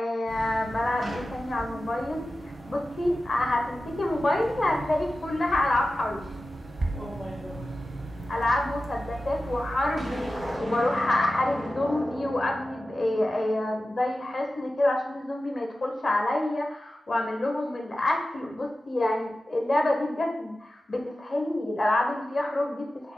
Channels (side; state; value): both; normal; correlation 0.94